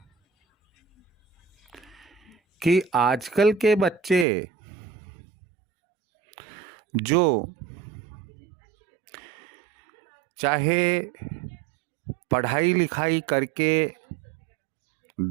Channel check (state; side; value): drops out; left; at 4.2 s